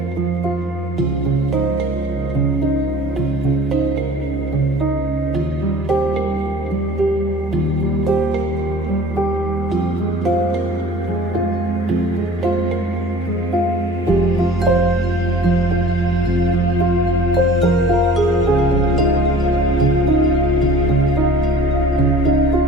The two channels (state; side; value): normal; both; correlation 0.46